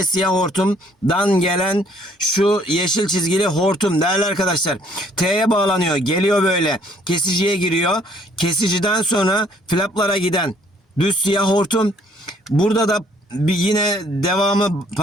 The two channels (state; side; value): normal; both; correlation 0.62